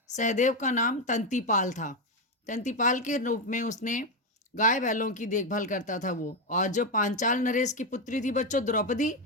का नाम तंतीपाल था। तंतीपाल के रूप में उसने गाय बैलों की देखभाल करता था वो। और जो पांचाल नरेश की पुत्री थी बच्चों द्रौपदी,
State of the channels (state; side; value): normal; both; correlation 0.08